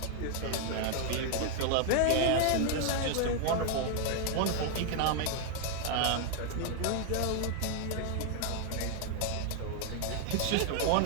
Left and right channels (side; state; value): both; different; correlation 0.00